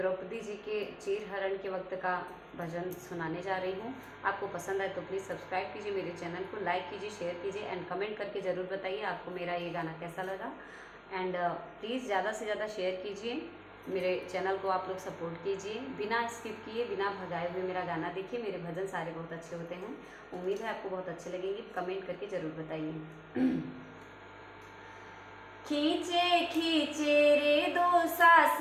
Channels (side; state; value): both; identical; correlation 1.00